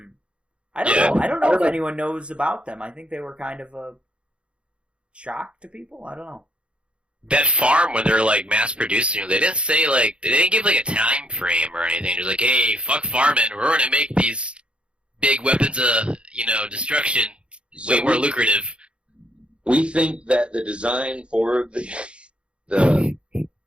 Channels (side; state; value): left; late; 0.057 ms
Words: I don't know. I don't know if anyone knows about them. I think they were kind of a shock to people. I don't know. That farm when they're like mass producing, they didn't say they didn't give like a time frame or anything. They're like, hey, fuck farming, we're gonna make these big weapons of destruction way more lucrative. We think that the design for the